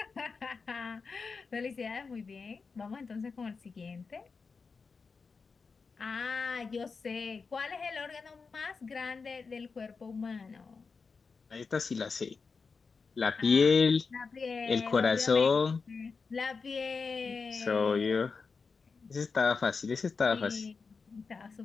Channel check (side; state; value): right; quieter; 4.8 dB